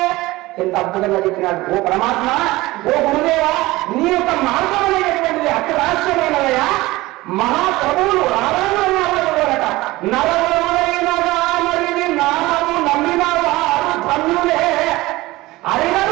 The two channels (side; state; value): left; quieter; 19.3 dB